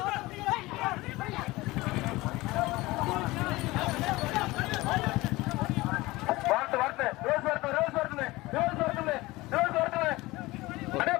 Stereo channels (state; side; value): quieter; right; 20.2 dB